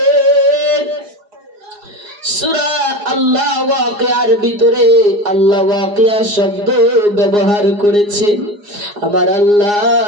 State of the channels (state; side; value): late; left; 4.8 ms